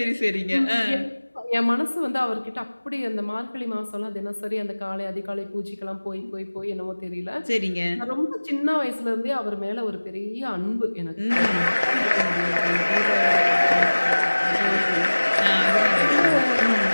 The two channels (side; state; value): both; inverted; correlation -1.00